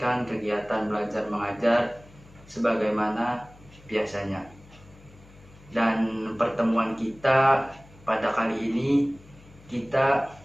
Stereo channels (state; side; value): noise; left; hum, 24 dB below the sound